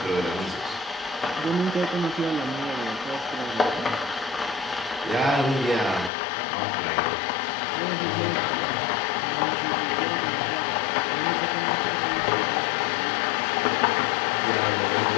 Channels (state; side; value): drops out; right; at 6.1 s